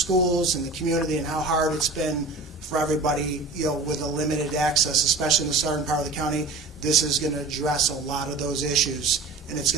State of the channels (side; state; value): left; quieter; 3.5 dB